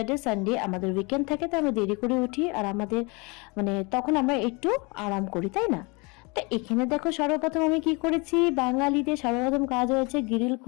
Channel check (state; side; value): quieter; right; 28.8 dB